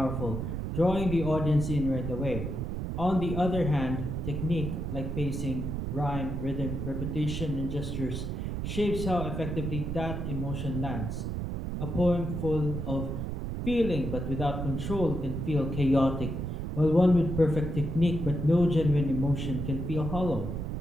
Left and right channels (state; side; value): noise; right; rumble, 3 dB below the sound